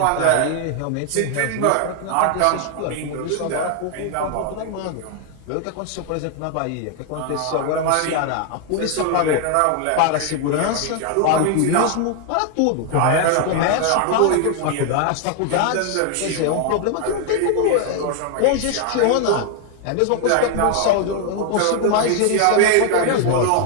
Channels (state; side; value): different; both; correlation 0.00